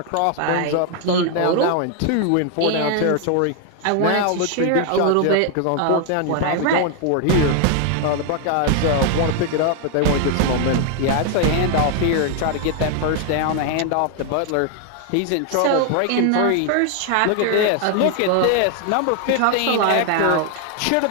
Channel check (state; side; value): different; both; correlation 0.00